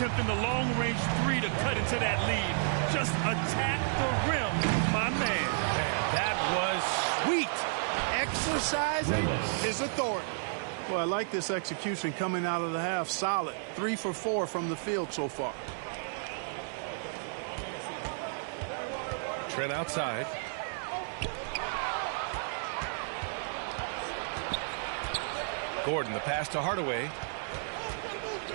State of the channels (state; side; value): silent; left; digital silence